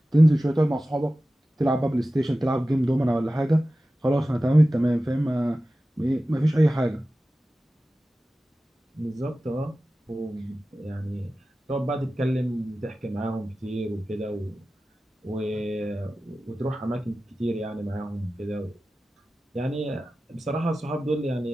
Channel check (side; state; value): both; normal; correlation 0.95